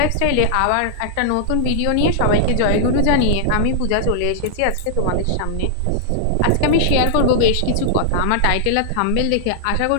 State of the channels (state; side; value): different; both; correlation -0.01